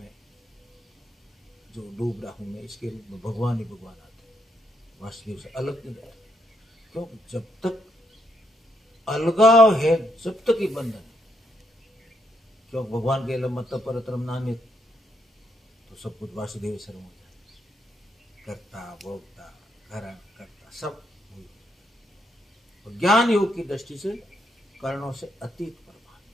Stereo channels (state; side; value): normal; both; correlation 0.76